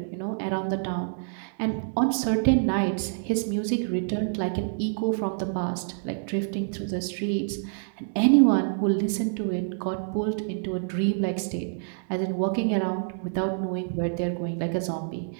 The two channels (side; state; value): left; silent; digital silence